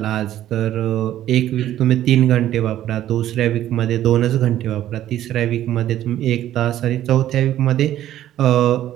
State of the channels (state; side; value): quieter; left; 12.5 dB